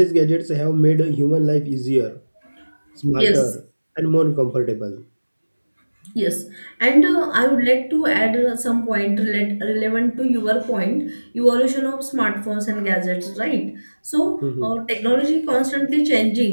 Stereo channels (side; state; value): both; inverted; correlation -1.00